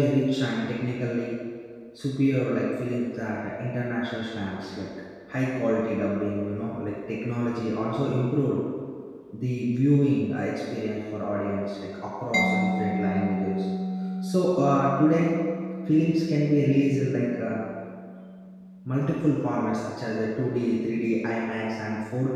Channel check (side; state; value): both; identical; correlation 1.00